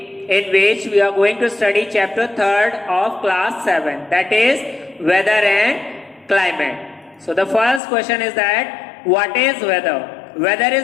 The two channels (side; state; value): right; drops out; at 7.8 s